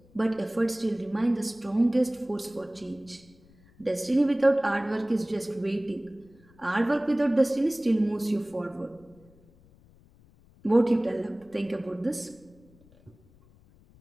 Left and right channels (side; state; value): left; noise; rumble, 28 dB below the sound